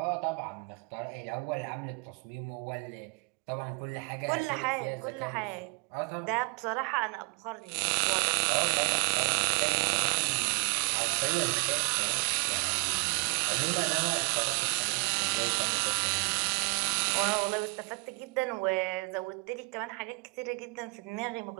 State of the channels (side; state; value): left; quieter; 32.3 dB